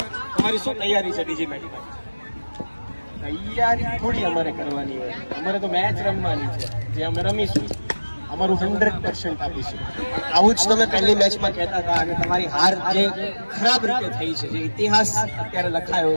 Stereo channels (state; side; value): inverted; both; correlation -1.00